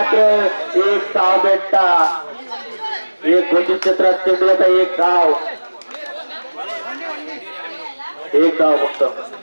एक धाव भेटता. एक घोषित क्षेत्रात चेंडूचा एक धाव. एक धाव फक्त.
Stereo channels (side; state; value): both; inverted; correlation -1.00